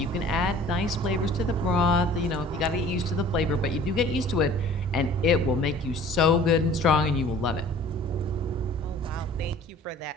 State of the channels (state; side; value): normal; both; correlation 0.49